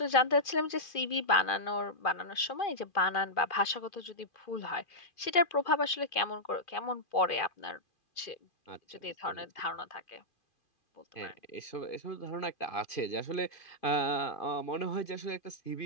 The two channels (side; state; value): right; late; 2.4 ms